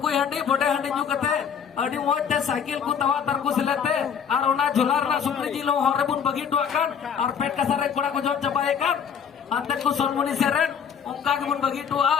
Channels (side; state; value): right; quieter; 7.4 dB